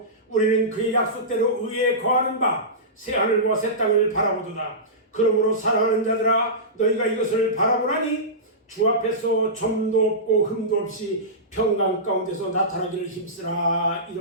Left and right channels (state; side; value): normal; both; correlation -0.18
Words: 우리는 그의 약속대로 의에 거하는 바 새 하늘과 새 땅을 바라보도다. 그러므로 사랑하는 자들아, 너희가 이것을 바라보라니 주 앞에서 점도 없고 흠도 없이 평강 가운데서 나타나기를 힘쓰라.